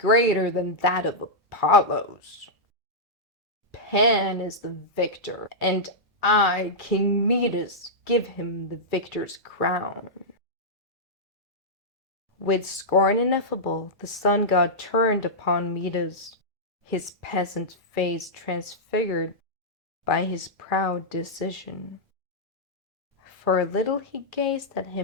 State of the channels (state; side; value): normal; both; correlation -0.10